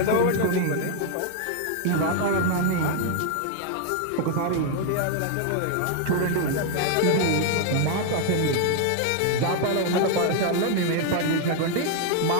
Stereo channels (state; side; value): different; both; correlation 0.00